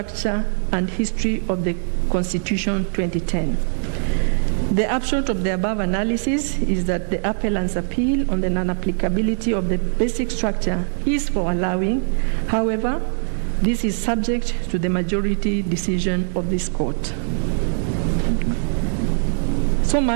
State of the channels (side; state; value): left; silent; digital silence